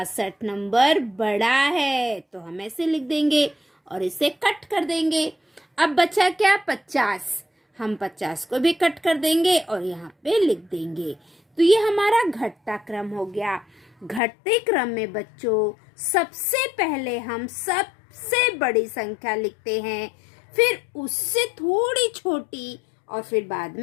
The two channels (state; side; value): drops out; right; at 14.2 s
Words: नंबर बड़ा है। तो हम ऐसे लिख देंगे और इसे कट कर देंगे। अब बचा क्या? 50। हम 50 को भी कट कर देंगे और यहाँ पे लिख देंगे। तो ये हमारा घटता क्रम हो गया। घटते क्रम में बच्चों सबसे पहले हम सबसे बड़ी संख्या लिखते हैं, फिर उससे थोड़ी छोटी और फिर बाद